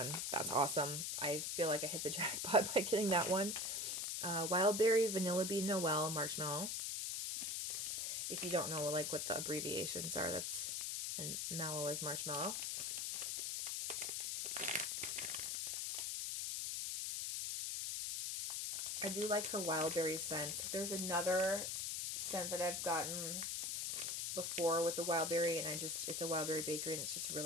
That's awesome. I feel like I hit the jackpot by getting that one. Wild Berry, Vanilla Bean, Noel, Marshmallow. If you don't know like what the abbreviations are, that's, and mallow is marshmallow. I do like her wild berry scent. There's another scent that I've gotten before with the wild berry, and it's a wild berry bakery, and it's just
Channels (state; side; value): noise; left; hiss, 1 dB below the sound